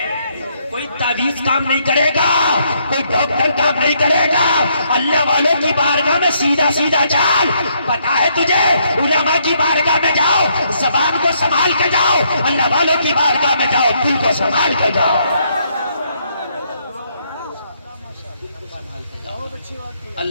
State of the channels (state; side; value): inverted; both; correlation -0.72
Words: کوئی تعویذ کام نہیں کرے گا, کوئی ڈاکٹر کام نہیں کرے گا. اللہ والوں کی بارگاہ میں سیدھا سیدھا چال. پتا ہے تجھے, علماء کی بارگاہ میں جاؤ, زبان کو سنبھال کے جاؤ. اللہ والوں کی بارگاہ میں جاؤ, دل کو سنبھال کے جاؤ.